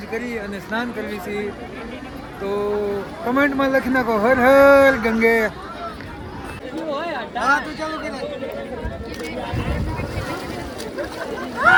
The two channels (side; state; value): both; identical; correlation 1.00